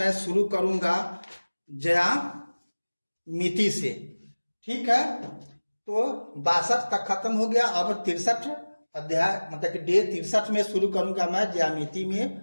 शुरू करूंगा ज्यामिति से। ठीक है, तो 62 तक खत्म हो गया, अब 63 अध्याय मतलब कि डे 63 में शुरू करूंगा मैं ज्यामिति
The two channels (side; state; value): both; inverted; correlation -1.00